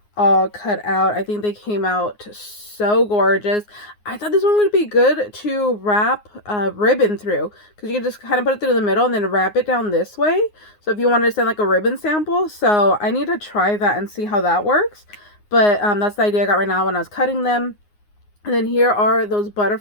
all cut out. I think they came out so gorgeous. I thought this one would be good to wrap ribbon through, because you can just kind of put it through the middle and then wrap it down this way. So if you wanted to send like a ribbon sample, so I need to try that and see how that works. But that's the idea I got right now when I was cutting them. And then here are those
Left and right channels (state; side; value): late; right; 9.6 ms